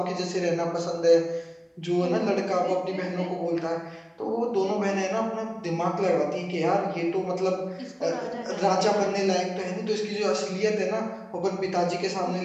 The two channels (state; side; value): identical; both; correlation 1.00